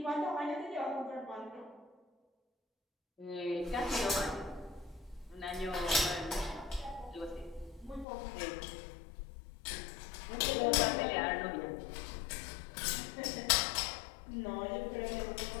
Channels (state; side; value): drops out; right; at 8.1 s